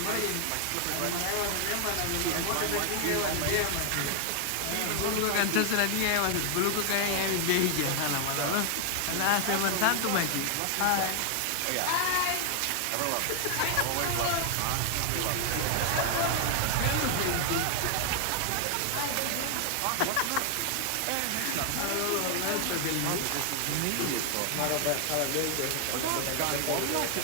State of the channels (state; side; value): different; both; correlation 0.00